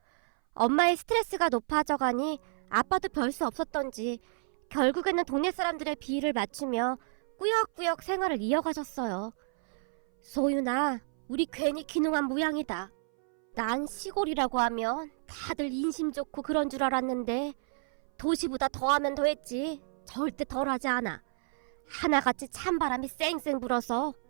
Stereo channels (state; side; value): silent; left; 57 dB below the other